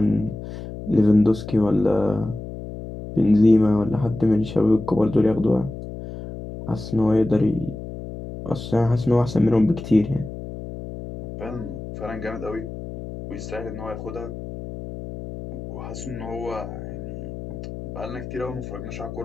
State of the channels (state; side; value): noise; left; hum, 10 dB below the sound